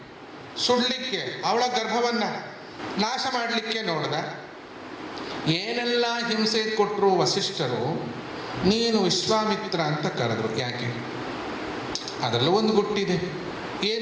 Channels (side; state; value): both; identical; correlation 1.00